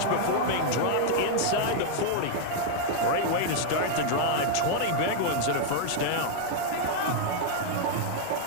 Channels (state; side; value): different; both; correlation -0.01